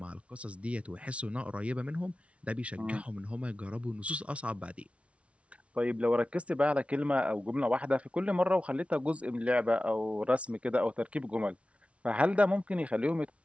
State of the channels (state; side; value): late; left; 0.062 ms